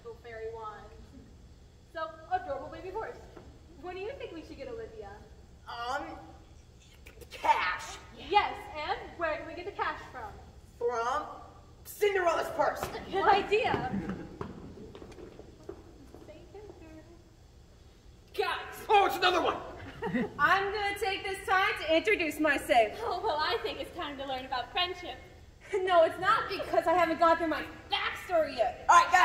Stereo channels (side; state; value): both; identical; correlation 1.00